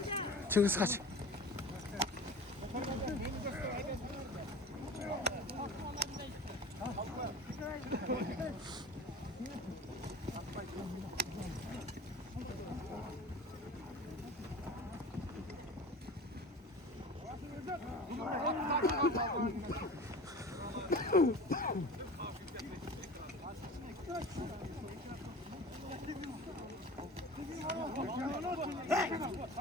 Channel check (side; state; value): both; normal; correlation 0.37